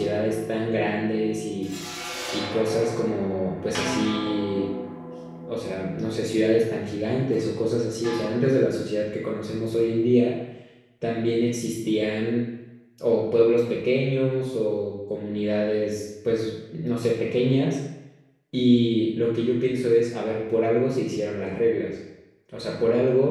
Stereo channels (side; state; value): both; identical; correlation 1.00